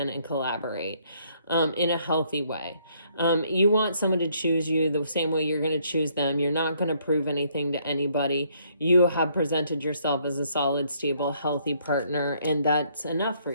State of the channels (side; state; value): both; inverted; correlation -0.67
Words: and collaborate. in a healthy way. You want someone to choose you the same way you're going to choose them. You're not going to prove anything to anybody. You have presented yourself as a solid, stable, healthy partner, and that's enough for